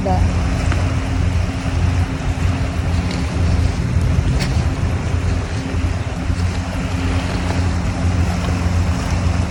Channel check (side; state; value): both; identical; correlation 1.00